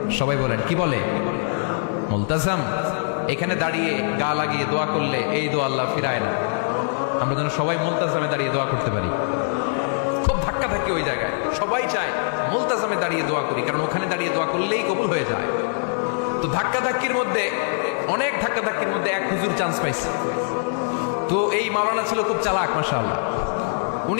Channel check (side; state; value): right; silent; digital silence